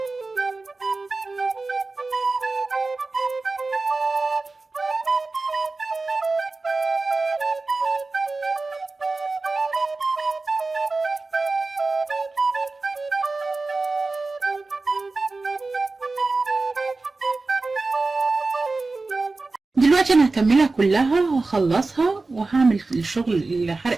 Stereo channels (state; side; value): quieter; left; 3.6 dB